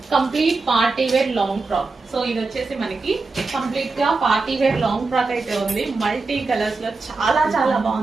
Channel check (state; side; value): quieter; left; 3.9 dB